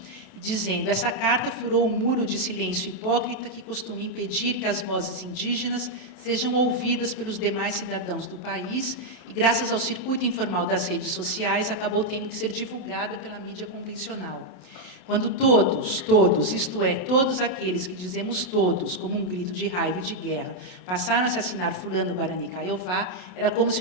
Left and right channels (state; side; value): late; right; 27 ms